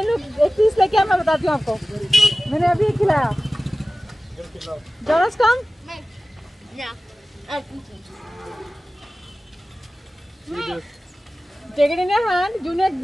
लोग एक पीस लेके आ, मैं बताती हूँ आपको। मैंने अभी खिलाया। Jonas come। Take it in your hand, Junior.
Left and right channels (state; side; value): normal; both; correlation 0.96